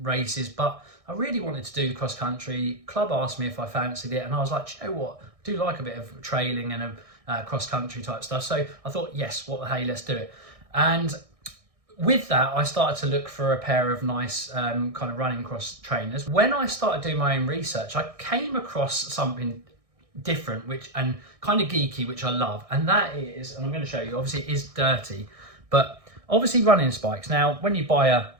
races, but I really wanted to do the cross country. Club asked me if I fancied it, and I was like, you know what, I do like a bit of trailing and a cross country type stuff. So I thought, yes, what the hey, let's do it. And with that, I started to look for a pair of nice kind of running cross trainers. When I started doing my own research, I came across something different, and kind of geeky, which I love. And that is, and I'm going to show you, obviously it is dirty, but obviously running spikes. Now, when you buy a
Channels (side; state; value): left; late; 1.6 ms